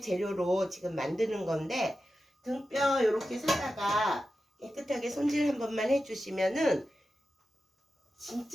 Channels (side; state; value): both; normal; correlation 0.92